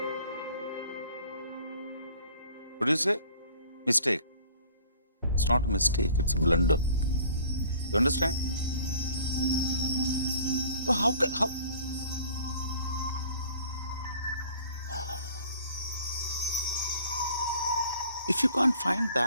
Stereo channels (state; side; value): inverted; both; correlation -0.51